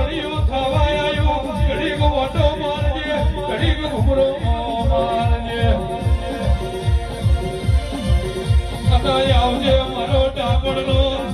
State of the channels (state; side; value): identical; both; correlation 1.00